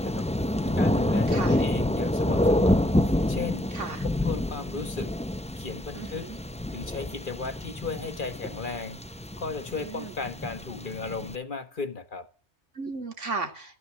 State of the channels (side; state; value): both; normal; correlation 0.67